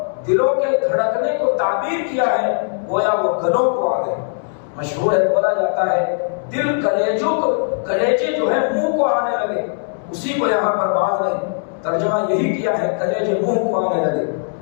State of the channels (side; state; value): right; silent; 66 dB below the other